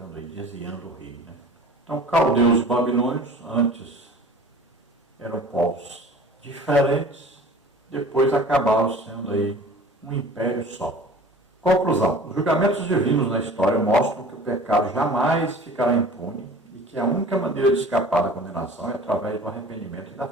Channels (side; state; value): both; normal; correlation 0.43